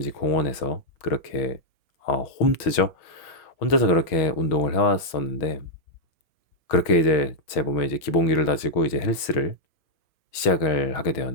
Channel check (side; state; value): right; late; 6.2 ms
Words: 공원에서 그렇게 홈트죠. 혼자서 그렇게 운동을 해왔었는데, 그렇게 이제 제 몸에 이제 기본기를 다지고 이제 헬스를 시작을 하게